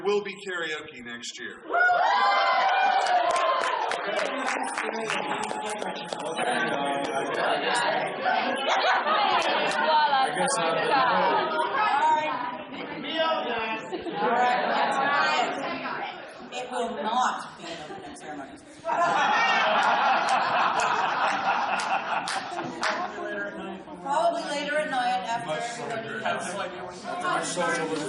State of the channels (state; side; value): identical; both; correlation 1.00